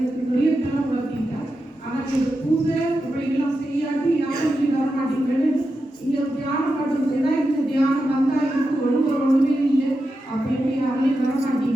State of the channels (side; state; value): both; normal; correlation 0.89